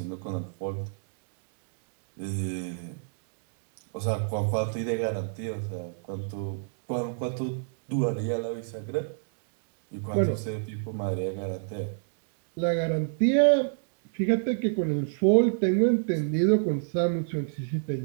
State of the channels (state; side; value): silent; left; digital silence